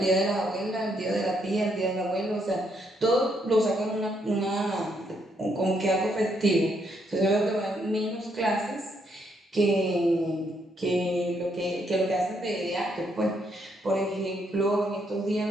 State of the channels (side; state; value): both; normal; correlation 0.74